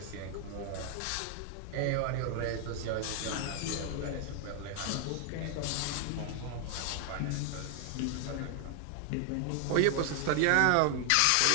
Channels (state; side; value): different; both; correlation 0.00